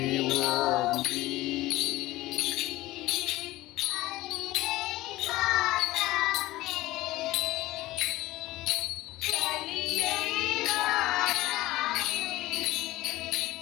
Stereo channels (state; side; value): quieter; right; 17.8 dB